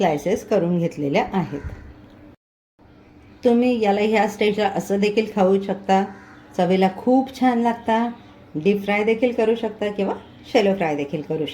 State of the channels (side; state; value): both; identical; correlation 1.00